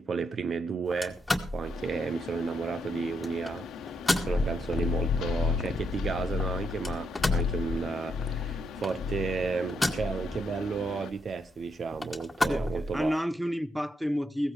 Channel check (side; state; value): both; normal; correlation 0.79